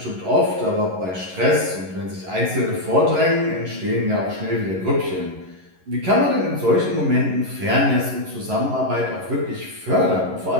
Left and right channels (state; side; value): late; left; 11 ms